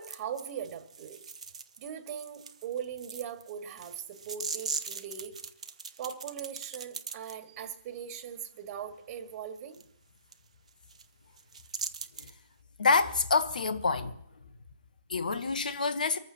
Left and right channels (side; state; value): both; inverted; correlation -0.48